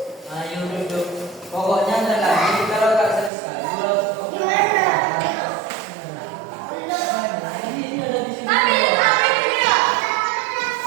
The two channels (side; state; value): left; drops out; at 3.3 s